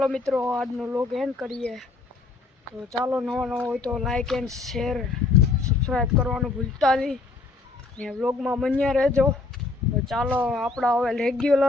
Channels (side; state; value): right; quieter; 3.7 dB